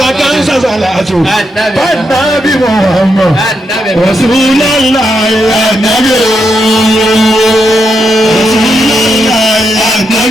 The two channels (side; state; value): both; normal; correlation 0.82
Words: ń sàṣàlátù bàtà bí wọ́n ọmọ Rasulullah ànábì o.